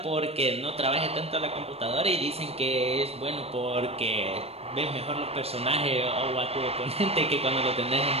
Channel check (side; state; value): left; late; 0.29 ms